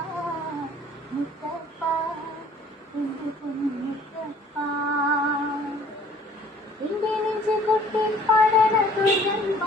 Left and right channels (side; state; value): both; normal; correlation 0.54